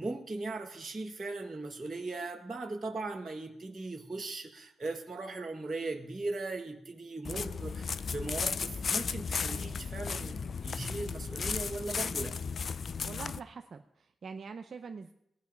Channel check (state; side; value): normal; both; correlation 0.86